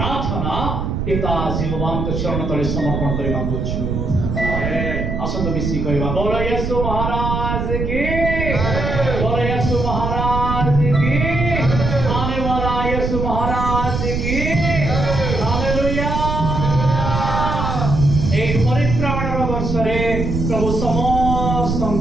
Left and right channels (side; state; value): right; noise; rumble, 2 dB below the sound